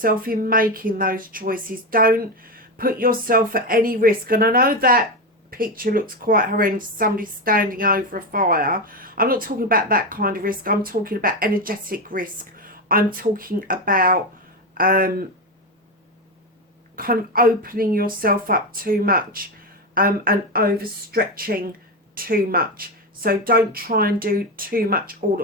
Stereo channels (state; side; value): normal; both; correlation 0.14